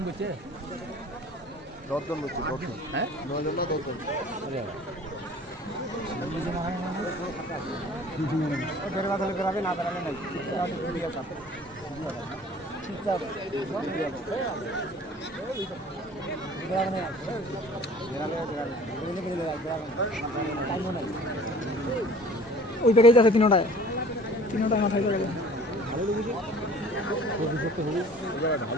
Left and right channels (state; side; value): normal; both; correlation 0.48